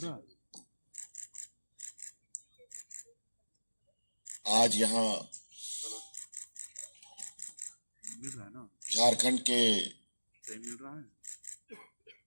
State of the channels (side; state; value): both; inverted; correlation -1.00